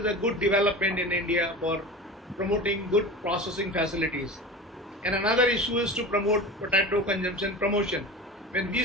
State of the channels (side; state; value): both; normal; correlation 0.32